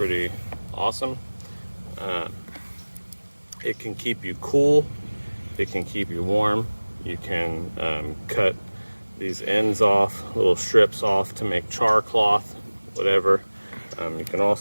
awesome. It can keep you cool, it can keep you warm. You can cut these ends off, little strips off to make char cloth, whatever. You can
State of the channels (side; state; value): both; inverted; correlation -1.00